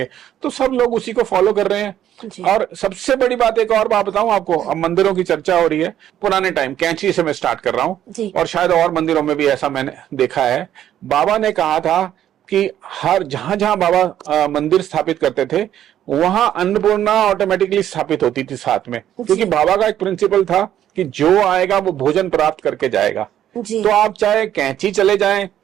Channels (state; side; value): quieter; left; 11.1 dB